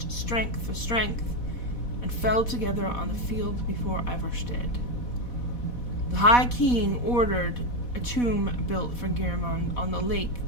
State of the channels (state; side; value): late; right; 4.1 ms